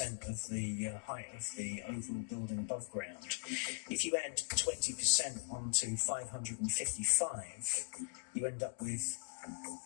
of the height of the overall building above ground. If you add 20% onto 555, you end up with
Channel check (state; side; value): silent; right; digital silence